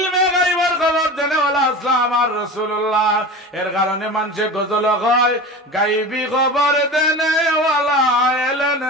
গায়বের খবর দেনে ওয়ালা ইসলাম আর রাসূলুল্লাহ। এর কারণে মানুষে গজল কয় গায়বী খবর দেনে ওয়ালা এলেন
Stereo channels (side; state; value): both; normal; correlation 0.32